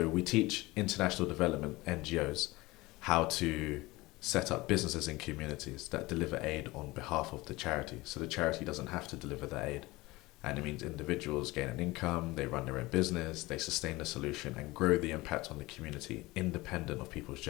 we teach international development NGOs how to set up businesses in communities that deliver aid on behalf of the charity. So the charity doesn't have to deliver the aid. And it means individuals gain an income, they run their own business, they sustain the solution and grow the impact on the community independent of people's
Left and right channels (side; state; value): right; quieter; 20.9 dB